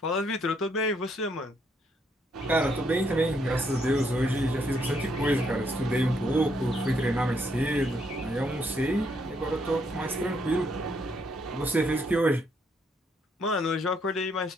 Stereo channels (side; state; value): both; normal; correlation 0.73